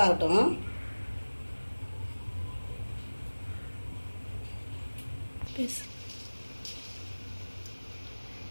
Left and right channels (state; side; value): inverted; both; correlation -1.00